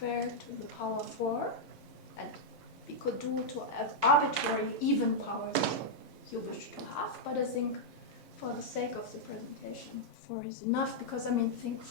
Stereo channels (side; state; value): both; normal; correlation -0.05